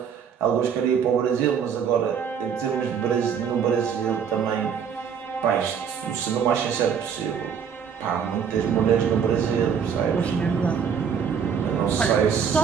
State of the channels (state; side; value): quieter; left; 7.3 dB